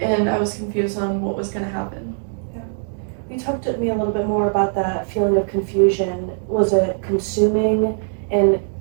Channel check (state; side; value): silent; left; 65 dB below the other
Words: I was confused on what was gonna happen. You talked to me a little bit more about that feeling of confusion. Was it consuming and